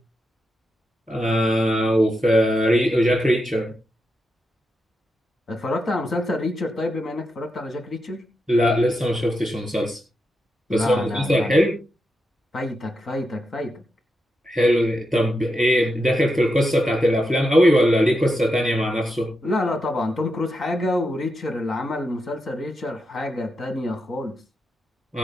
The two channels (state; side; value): normal; both; correlation 0.86